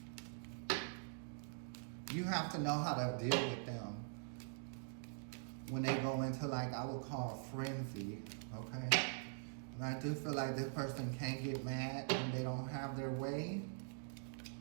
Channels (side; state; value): left; silent; digital silence